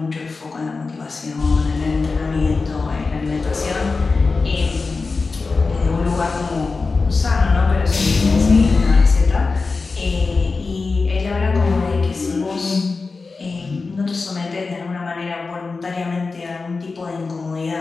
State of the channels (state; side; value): quieter; right; 4.2 dB